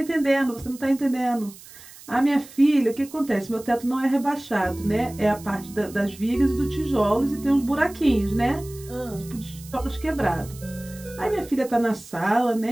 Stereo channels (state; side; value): noise; right; hiss, 19 dB below the sound